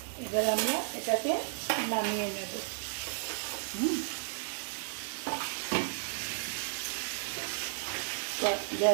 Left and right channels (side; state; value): left; silent; 55 dB below the other